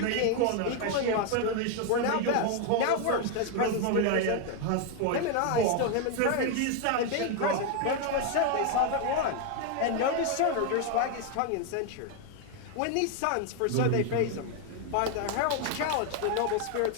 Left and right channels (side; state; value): both; different; correlation 0.01